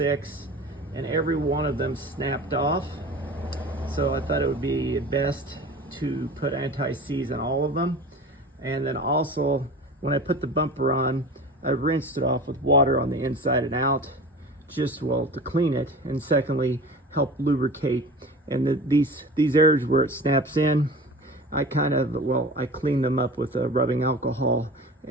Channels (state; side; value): normal; both; correlation 0.36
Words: and every one of them snapped off. So I thought it would be best to put anti-seize on all of them. And then also, when I put the bumper on, I rinsed it off with water on the inside and out, just to clean it, and secondly, help lubricate. And these areas where it snaps in, I clean them up with a rubbing alcohol